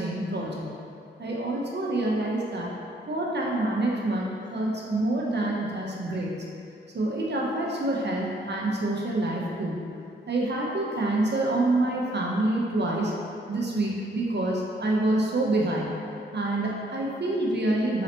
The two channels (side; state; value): both; normal; correlation 0.66